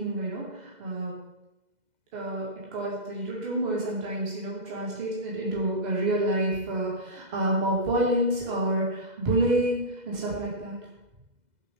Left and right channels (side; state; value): left; late; 2.0 ms